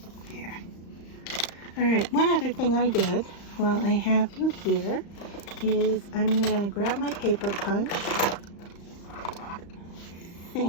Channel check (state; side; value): late; right; 35 ms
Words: There. All right, one other thing I did while I have you here is I'm going to grab my paper punch. I